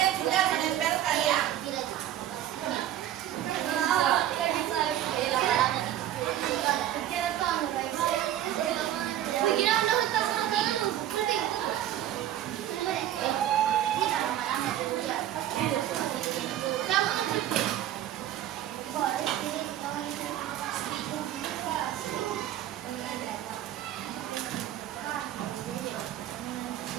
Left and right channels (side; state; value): left; quieter; 12.1 dB